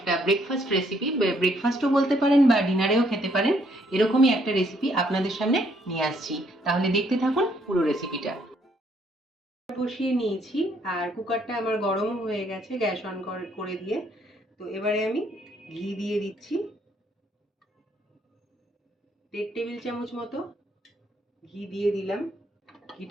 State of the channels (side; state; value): both; normal; correlation 0.69